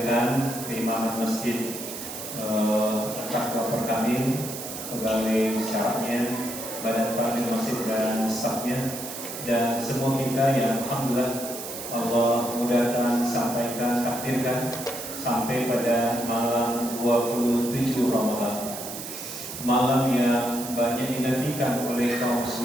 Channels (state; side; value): noise; right; hiss, 9 dB below the sound